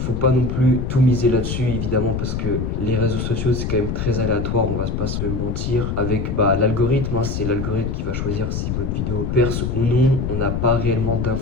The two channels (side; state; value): left; noise; rumble, 2 dB below the sound